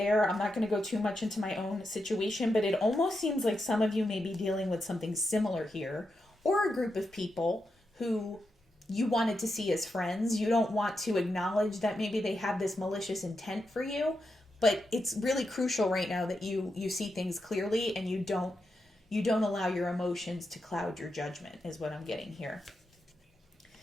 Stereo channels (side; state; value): both; normal; correlation 0.86